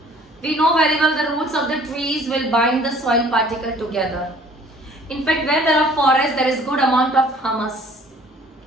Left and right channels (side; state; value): both; normal; correlation 0.54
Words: We know very well the roots of the trees will bind the soil particle together. In fact, where there are forests, there is good amount of humus.